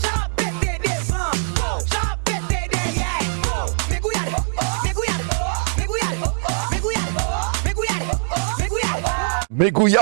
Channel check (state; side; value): silent; left; digital silence